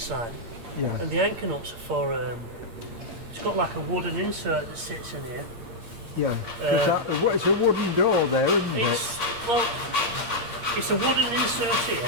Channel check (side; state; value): left; late; 8.7 ms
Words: Yeah. and the anchor nuts are for it's got like a wooden insert that sits in here. Yeah. It's a wooden door there, isn't it? It's a wooden insert here